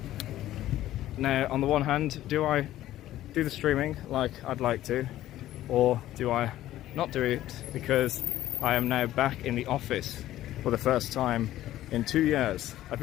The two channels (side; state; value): right; quieter; 13.9 dB